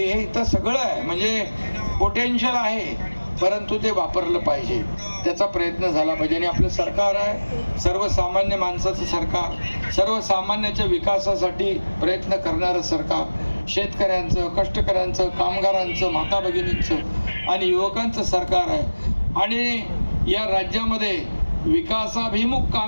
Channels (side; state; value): both; inverted; correlation -1.00